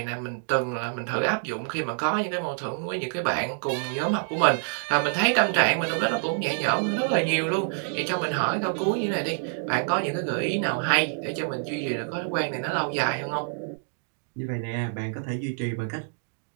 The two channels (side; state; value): left; silent; 60 dB below the other